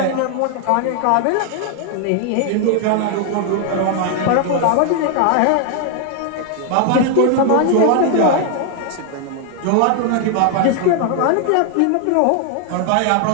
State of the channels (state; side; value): different; both; correlation 0.00